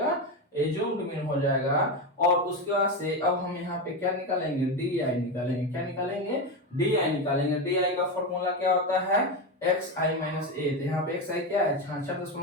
एज्यूम्ड मीन हो जाएगा। और उसके बाद से अब हम यहाँ पे क्या निकालेंगे, डी आई निकालेंगे। क्या निकालेंगे, डी आई निकालेंगे। डी आई का फॉर्मूला क्या होता है, एक्स आई माइनस ए। तो यहाँ पे एक्स आई क्या है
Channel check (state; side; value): normal; both; correlation 0.14